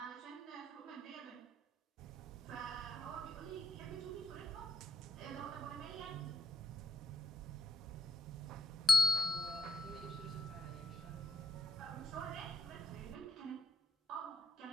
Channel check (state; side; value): normal; both; correlation 0.82